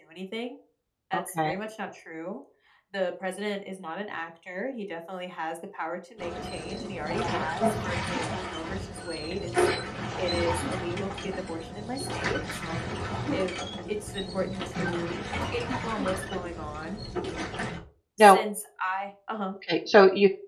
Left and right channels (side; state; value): both; identical; correlation 1.00